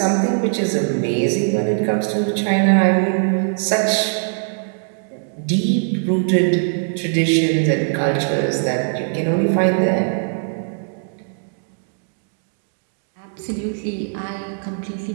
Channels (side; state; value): left; silent; digital silence